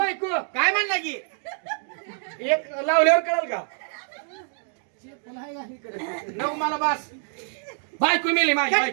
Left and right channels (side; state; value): left; silent; 57 dB below the other